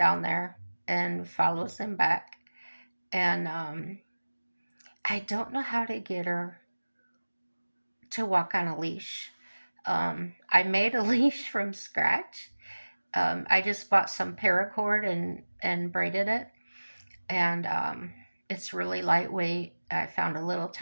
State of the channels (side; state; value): both; inverted; correlation -1.00